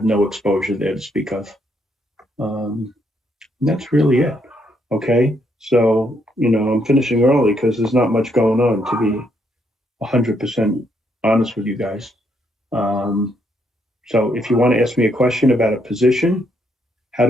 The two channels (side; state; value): both; normal; correlation 0.74